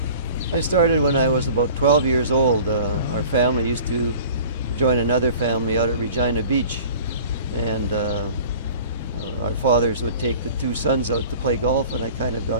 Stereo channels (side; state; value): both; inverted; correlation -0.45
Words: I started when I was about 12 years old. Our family used to join another family out at Regina Beach, and our fathers would take the two sons out to play golf, and I kind of